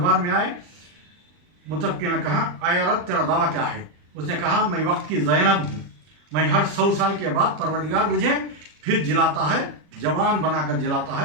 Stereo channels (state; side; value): late; left; 40 ms